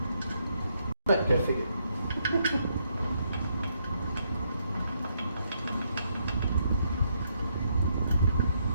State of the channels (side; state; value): both; inverted; correlation -0.75